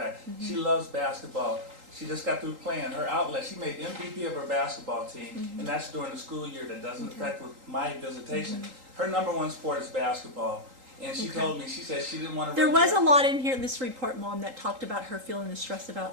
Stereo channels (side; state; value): left; late; 3.8 ms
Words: She loves basketball. She just got through playing her outlet. She made MVP of her basketball team, and that's during the school year. That doesn't affect with my visitation. Her #1 sport is basketball. And she told me, she said she didn't want to There run was a track. lot in here, this report, Mom, that talked about her feeling the stress about